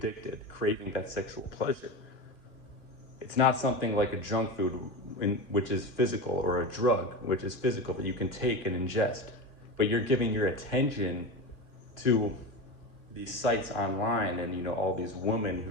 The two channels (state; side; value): late; right; 2.4 ms